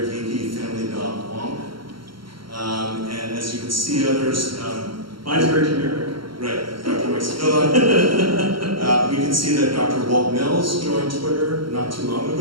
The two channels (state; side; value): late; left; 0.73 ms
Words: geeky family dog Wonk. And as you can see, others. Mine's very generic. Right, Dr. Maxilla. We can see that Dr. Walt Mills joined Twitter not too long